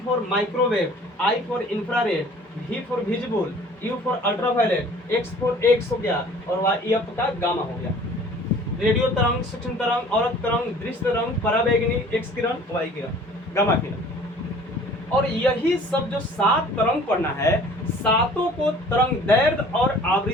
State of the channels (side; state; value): both; normal; correlation 0.50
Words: for microwave, I for infrared, V for visible, U for ultraviolet, X for x हो गया, और Y आपका गामा हो गया। रेडियो तरंग, सूक्ष्म तरंग, औरत तरंग, दृश्य तरंग, पराबैंगनी, X किरण, Y किरण, गामा किरण। और यही सब जो 7 तरंग पढ़ना है, सातों को तरंग दैर्घ्य और